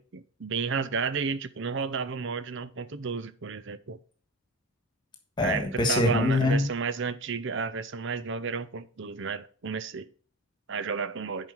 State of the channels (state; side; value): normal; both; correlation 0.29